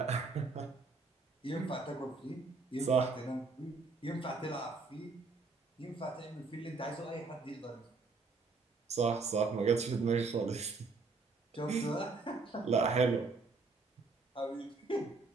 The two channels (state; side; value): quieter; left; 4.1 dB